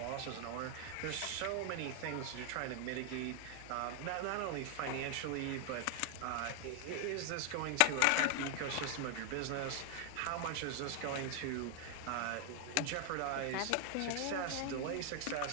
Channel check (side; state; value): both; different; correlation 0.00